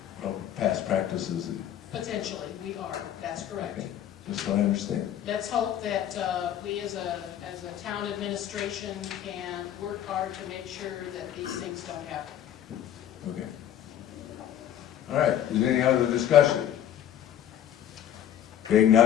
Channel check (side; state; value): right; quieter; 10.6 dB